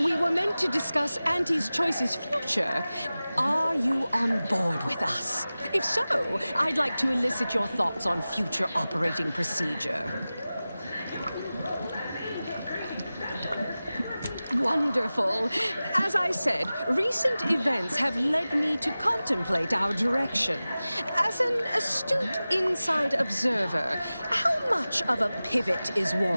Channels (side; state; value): both; inverted; correlation -0.96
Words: were meant to discuss Auntie's Choice's future. Are you on board with us? If so, I'd like to elicit your thoughts on future operating procedure. Wonderful. As I said, recent events have led me to contemplate our direction. As an astute inside observer, how much of a pivot is